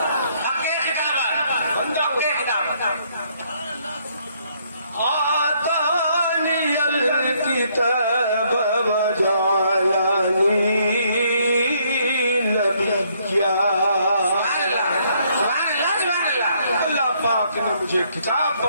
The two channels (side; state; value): both; inverted; correlation -0.68